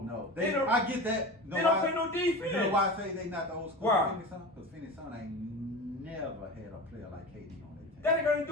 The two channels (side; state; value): both; normal; correlation 0.29